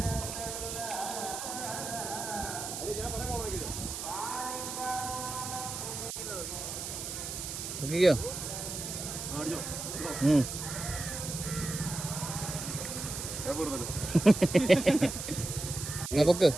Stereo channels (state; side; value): noise; right; hiss, 6 dB below the sound